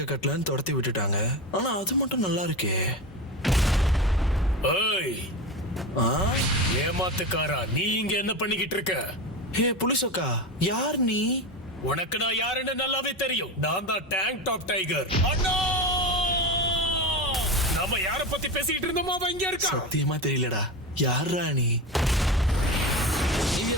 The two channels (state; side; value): normal; both; correlation 0.22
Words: கட்டலன்னு துரத்தி விட்டுட்டாங்க. ஆனா அது மட்டும் நல்லா இருக்கே. ஏய், ஏமாத்துக்காரா, நீ இங்க என்ன பண்ணிக்கிட்டு இருக்க? ஹே புலிசோக்கா, யார் நீ? உனக்கு நான் யாருன்னு நல்லாவே தெரியும். நான் தான் டேங்க் டாப் டைகர். அண்ணா, நம்ம யார பத்தி பேசிக்கிட்டு இருந்தோமோ அவன் இங்க இருக்கா. சத்தியமா தெரியலடா. யாரா நீ? நீ